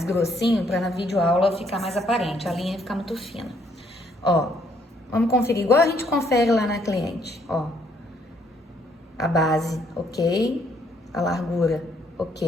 grossinho pra na videoaula ficar mais aparente. A linha ficar muito fina. Ó. Vamos conferir igual a gente confere lá na cliente, ó. A base, ok. A largura,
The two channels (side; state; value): both; normal; correlation 0.68